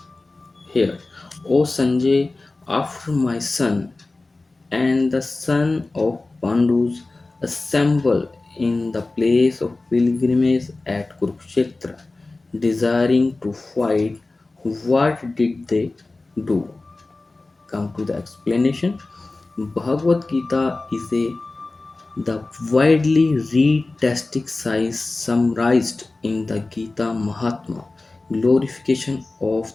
here, O Sanjay, after my son and the son of Pandus assemble in the place of pilgrimage at Kuruksetra, desiring to fight, what did they do? Come to the explanation. Bhagavad Gita is the widely read textic science summarized in the Gita Mahatma, glorification of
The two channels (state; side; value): quieter; right; 3.3 dB